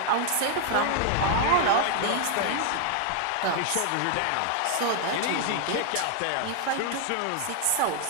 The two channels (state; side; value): different; both; correlation 0.00